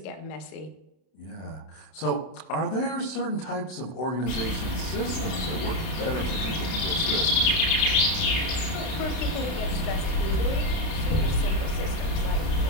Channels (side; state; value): right; late; 32 ms